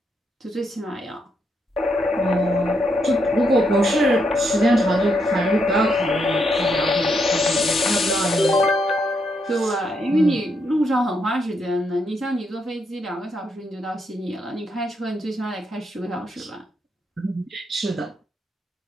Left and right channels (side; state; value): both; normal; correlation 0.79